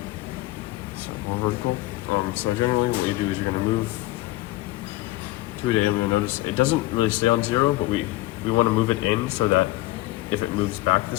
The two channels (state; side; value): quieter; right; 17.9 dB